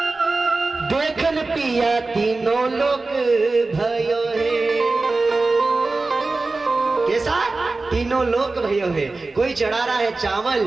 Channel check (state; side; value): quieter; left; 3.5 dB